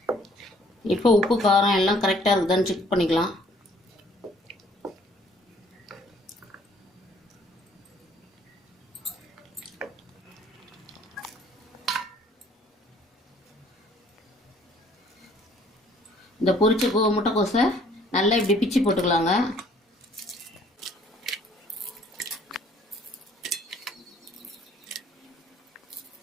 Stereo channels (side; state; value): both; normal; correlation 0.59